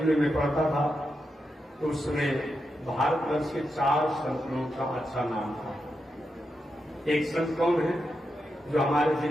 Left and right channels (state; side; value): normal; both; correlation 0.86